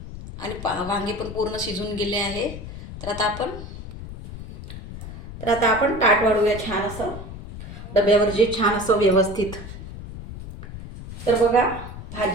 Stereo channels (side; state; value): left; noise; rumble, 11 dB below the sound